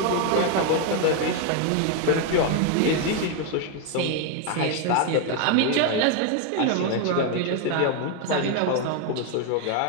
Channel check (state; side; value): different; both; correlation 0.01